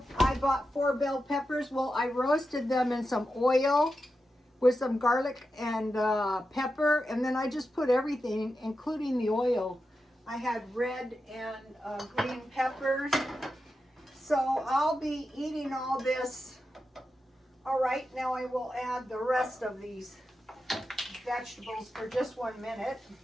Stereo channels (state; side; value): normal; both; correlation 0.90